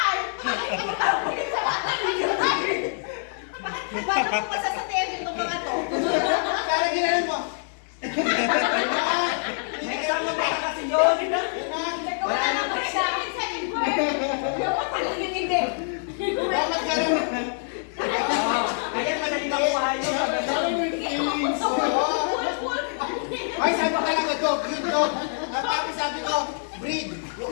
Bakit mo masasabihin itong mga to? Kaya ginanon mo. May kasama ba kasi yun? Wala na pa sa akin sa word. Dapat pala yung hindi. Dapat ka rin. Ayan, madali makuha yun. Sabi mo yung feelings. Ay, sabi ko talaga, dog, good dog. At tapos sabi ko, breed.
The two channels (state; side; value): silent; right; 61 dB below the other